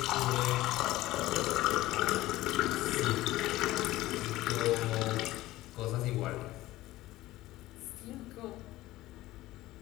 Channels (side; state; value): right; quieter; 16.9 dB